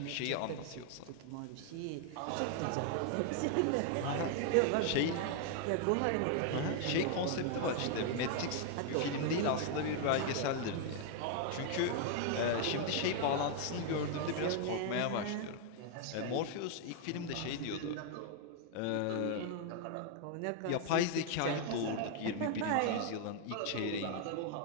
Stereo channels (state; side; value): different; both; correlation 0.00